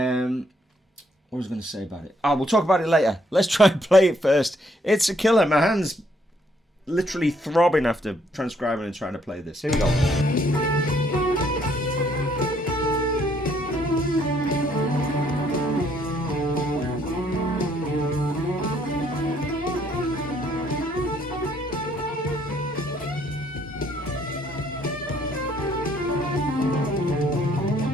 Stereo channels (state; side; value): normal; both; correlation 0.68